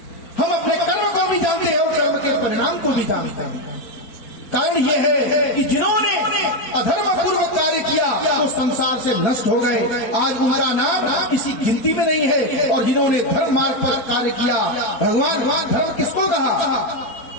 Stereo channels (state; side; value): late; right; 4.3 ms